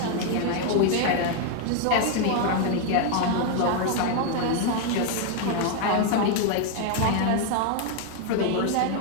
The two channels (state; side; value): different; both; correlation 0.00